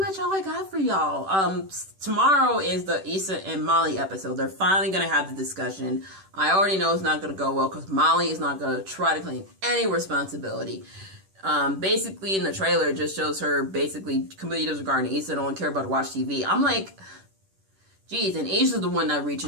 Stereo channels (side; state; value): left; late; 10 ms